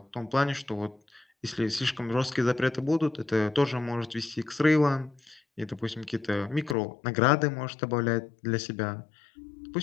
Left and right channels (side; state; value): right; drops out; at 6.8 s